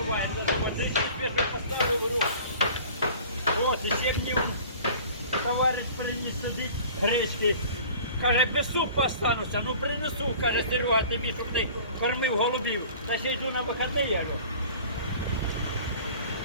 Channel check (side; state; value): both; inverted; correlation -0.45